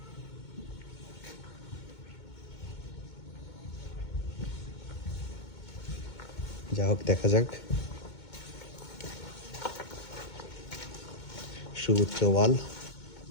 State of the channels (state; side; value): late; right; 2.2 ms